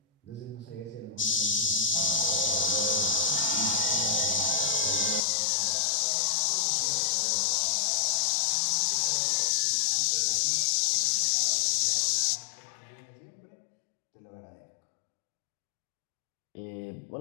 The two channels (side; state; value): right; drops out; at 5.2 s